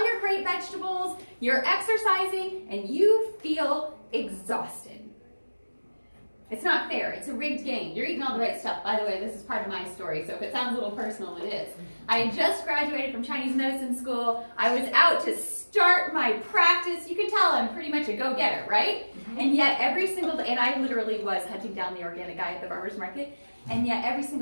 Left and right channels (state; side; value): inverted; both; correlation -1.00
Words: your great vegetables. You're exercising, and you feel exhausted. It's not fair. It's a rigged game. You're eating all the right stuff. By the way, this is part of my story, so if it sounds a little personal, it is. I just graduated from Chinese medicine school. I was out to start my practice. You can tell I'm pretty much a go-getter, right? And yet every single day, and I literally was hunting down the organic guy at the farmer's market, and yet every